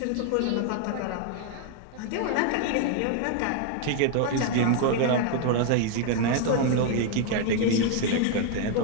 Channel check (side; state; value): both; different; correlation 0.00